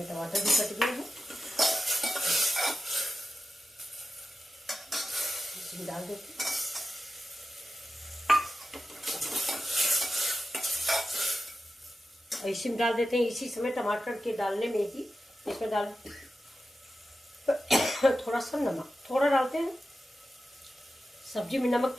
टमाटर भी कट गए हैं, इसमें डाल देते हैं। इसी में डाल देते हैं, इसी समय टमाटर के डालने में ही इसमें डाल थोड़ा सा नमक, थोड़ा डालते हैं। सब्जी में नमक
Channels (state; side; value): normal; both; correlation 0.92